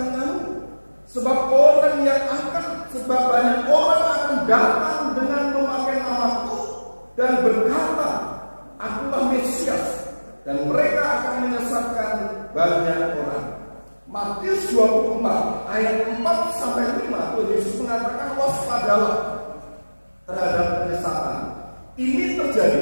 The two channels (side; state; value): both; inverted; correlation -1.00